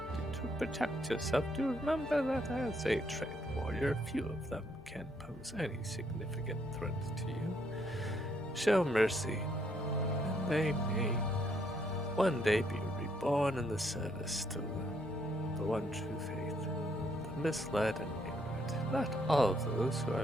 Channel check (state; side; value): normal; both; correlation 0.71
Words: to protect yourself, do remember that as a trained warrior, few of them can pose any significant threat to you. Show mercy, and they may one day be reborn in the service to the one true faith. The misled and ignorant, not all of those who